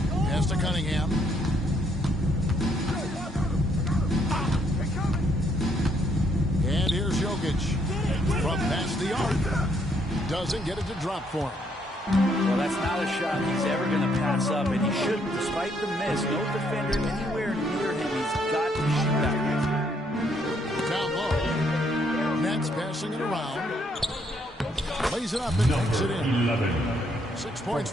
to Cunningham. And here's Jokic. From past the arc. Doesn't get it to drop for him. Well, that's not a shot he's ever going to pass up, and he shouldn't. Despite the miss, no defender anywhere near him. He's got to shoot that. Down low. Nets passing it around. Lays it up and takes it in. 11. 6 points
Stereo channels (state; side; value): normal; both; correlation 0.71